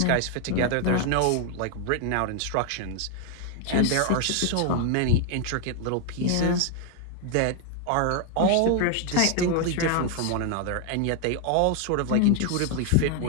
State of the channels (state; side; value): different; both; correlation 0.00